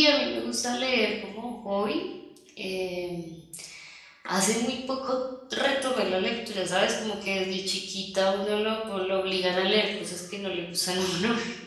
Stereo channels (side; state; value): both; identical; correlation 1.00